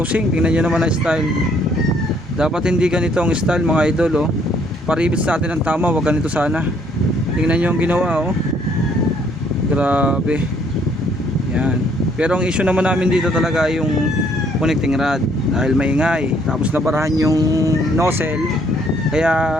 tingnan nyo naman ang style. Dapat hindi ganito ang style mga idol oh. Paribis natin ang tama, wag ganito sana. Tingnan nyo ang ginawa oh. Grabe. Yan. Pero ang issue naman namin dito talaga yung connecting rod dahil maingay. Tapos nabarahan yung nozzle kaya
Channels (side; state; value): both; normal; correlation 0.65